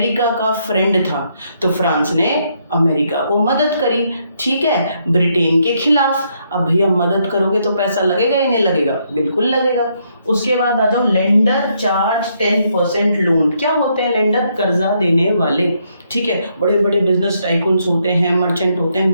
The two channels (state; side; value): inverted; both; correlation -0.75